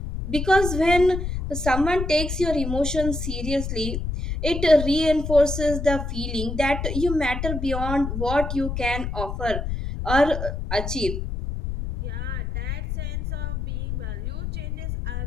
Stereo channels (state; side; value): noise; left; rumble, 4 dB below the sound